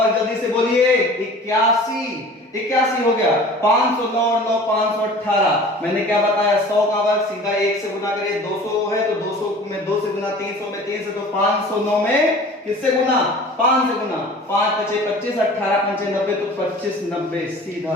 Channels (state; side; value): normal; both; correlation 0.43